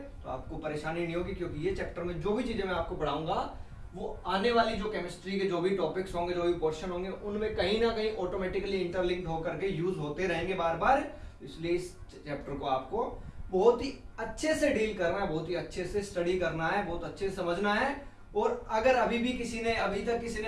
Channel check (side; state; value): both; identical; correlation 1.00